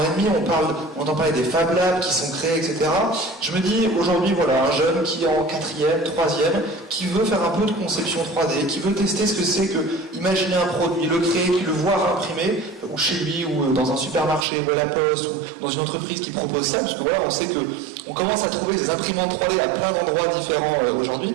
et demi, on entend parler des Fab Labs qui sont créés, etc. Je me dis aujourd'hui, voilà, un jeune qui est en 4e, 3e, qui veut faire un peu de conception 3D, qui veut tester ce que c'est que imaginer un produit, le créer, qui le voit imprimer, ou chez lui, ou dans un supermarché, ou à la poste, ou dans une entreprise qui propose ça, parce que voilà, on sait que on commence à trouver des imprimantes 3D à plein d'endroits différents aujourd'hui.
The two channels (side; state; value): left; drops out; at 14.5 s